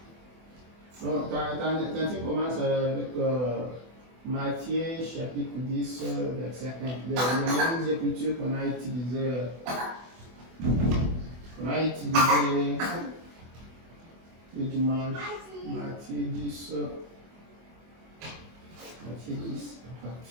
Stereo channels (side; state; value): left; late; 24 ms